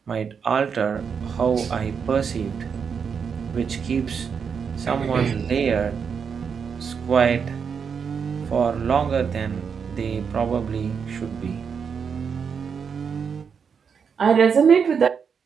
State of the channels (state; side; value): quieter; left; 6.5 dB